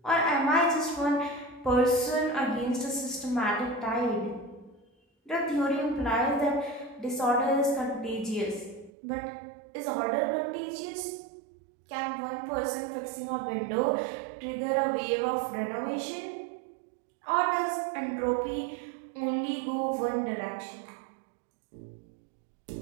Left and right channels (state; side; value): drops out; left; at 8.9 s